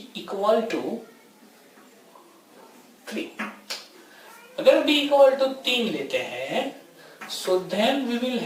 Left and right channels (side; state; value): both; identical; correlation 1.00